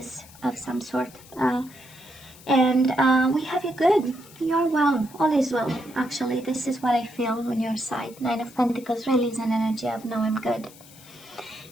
of some sort. And we have you good. You're well. All is well. Actually, this is what I feel on your side. Nine of Pentacles really is an energy of no, I'm good.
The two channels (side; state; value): left; noise; hiss, 22 dB below the sound